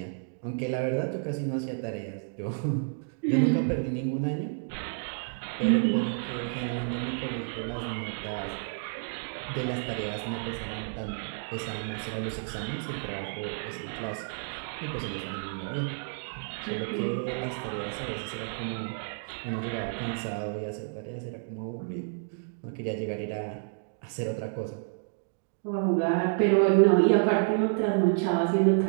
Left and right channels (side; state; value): left; silent; digital silence